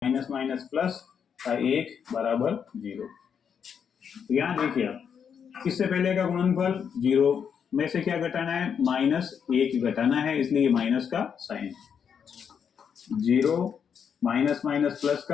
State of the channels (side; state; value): right; quieter; 7.3 dB